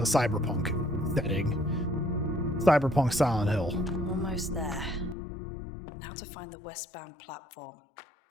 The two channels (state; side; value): drops out; right; at 5.2 s